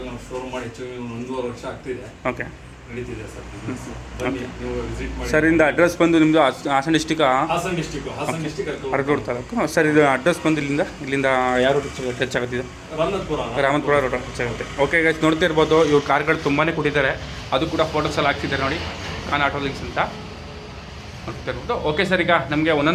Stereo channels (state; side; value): identical; both; correlation 1.00